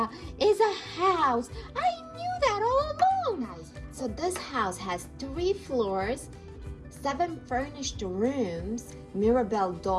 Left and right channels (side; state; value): both; identical; correlation 1.00